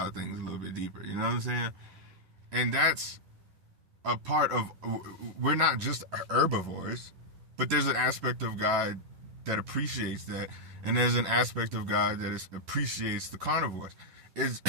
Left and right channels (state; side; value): late; left; 11 ms